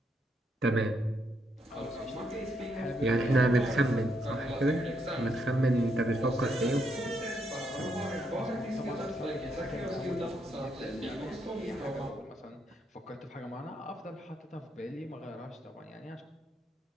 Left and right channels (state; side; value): normal; both; correlation 0.77